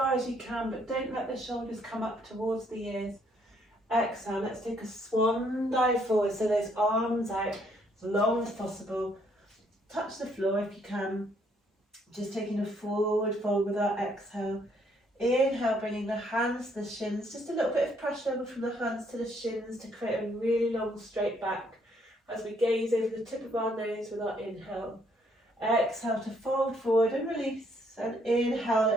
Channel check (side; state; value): both; normal; correlation 0.68